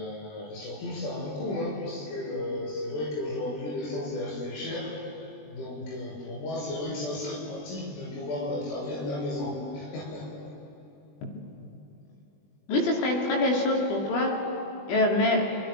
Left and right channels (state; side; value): late; right; 20 ms